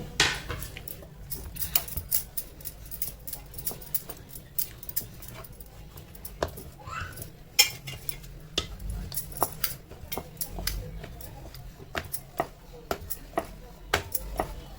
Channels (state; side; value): identical; both; correlation 1.00